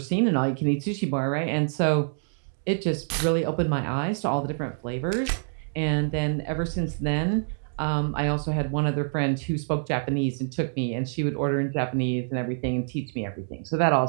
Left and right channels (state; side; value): silent; left; digital silence